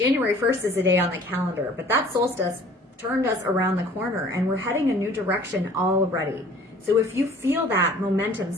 1st is a day on the calendar, but that solstice turned us around the corner and we're heading a new direction already. So if you feel that momentum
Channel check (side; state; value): both; normal; correlation 0.51